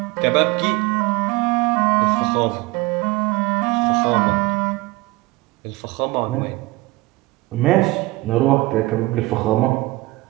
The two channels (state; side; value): quieter; left; 20.8 dB